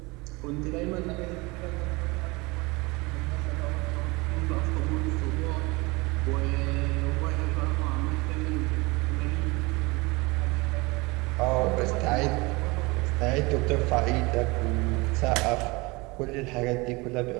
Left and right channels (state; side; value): quieter; left; 24.7 dB